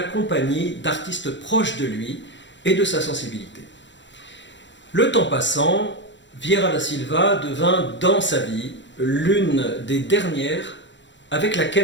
compagnie d'artistes proches de lui et de sa sensibilité. Le temps passant, Vieira da Silva devint dans sa vie l'une des dernières avec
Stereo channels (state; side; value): late; right; 0.53 ms